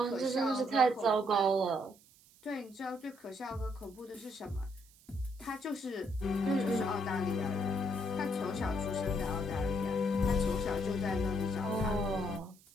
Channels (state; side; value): noise; right; hiss, 27 dB below the sound